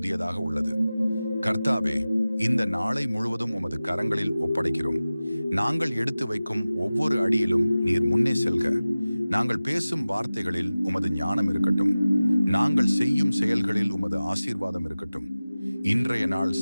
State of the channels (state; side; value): inverted; both; correlation -0.97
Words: உள்ளது. கர்த்தாவே, இந்த நாளை முழுவதும் உமது கரங்களில் ஒப்படைக்கிறோம். நாங்கள் எடுத்து வைக்கும் ஒவ்வொரு அடியிலும் நீர் முன்னே செல்க. நாங்கள் பேசும் வார்த்தைகளில் உமது ஞானம் இருக்கட்டும். நாங்கள் செய்யும் செயல்களில் உமது ஆசீர்வாதம் இருக்கட்டும். இன்றைய நாள்